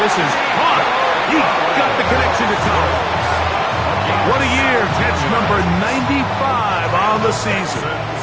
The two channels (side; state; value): both; identical; correlation 1.00